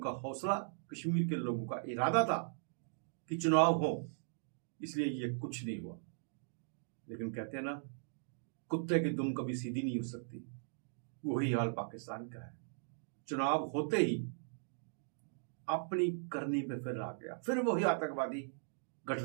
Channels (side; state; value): left; silent; digital silence